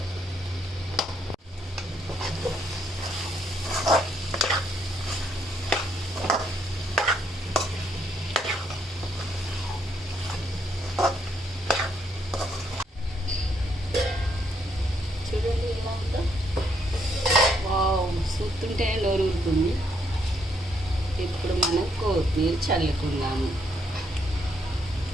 చూస్తుంటే నోరు ఊరుతుంది. ఇప్పుడు మనం కొత్తిమీర చల్లుకుందాము.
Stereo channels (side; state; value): both; normal; correlation 0.73